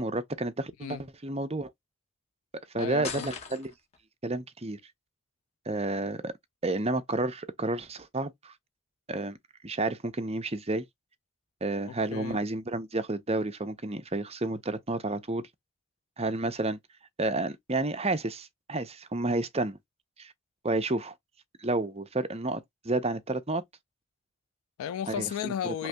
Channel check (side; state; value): both; normal; correlation 0.33